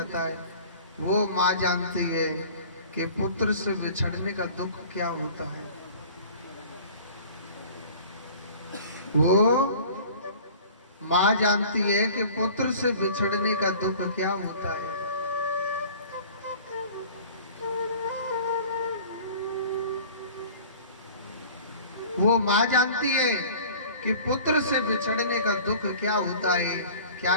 है, वो माँ जानती है कि पुत्र से बिछड़ने का दुख क्या होता है। वो माँ जानती है कि पुत्र से बिछड़ने का दुख क्या होता है। वो माँ जानती है कि पुत्र से बिछड़ने का दुख क्या होता है, क्या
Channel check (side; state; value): both; inverted; correlation -0.45